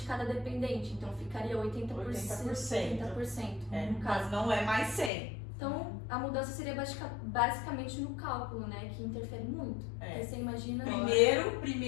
cada dependente. Então, ficaria 80%. 80%. No caso. Mas não é mais 100%. Então, a mudança seria basicamente no cálculo, né? Que interfere muito. Porque você imagina...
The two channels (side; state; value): right; drops out; at 5.1 s